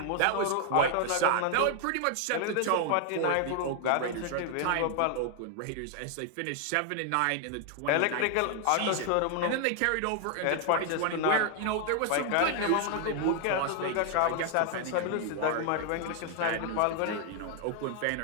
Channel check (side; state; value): both; different; correlation 0.00